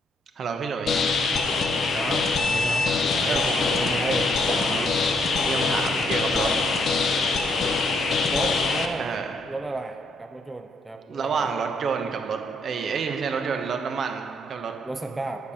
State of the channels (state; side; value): normal; both; correlation 0.72